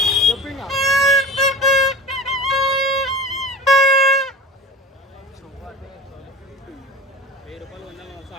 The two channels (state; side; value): normal; both; correlation 0.34